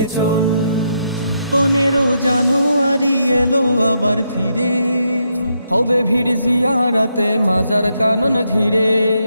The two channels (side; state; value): both; inverted; correlation -0.79